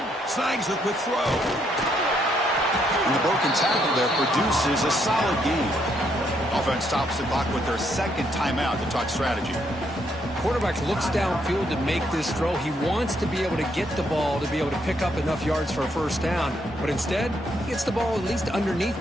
Snags the quick throw. And the broken tackle there produces a solid gain. Offense stops the clock with their second timeout to talk strategy. Quarterback looks downfield to make this throw. He wants to be able to get the ball to be able to pick up enough yards for a first down. But instead, he gets the ball at least underneath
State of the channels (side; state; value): both; normal; correlation 0.74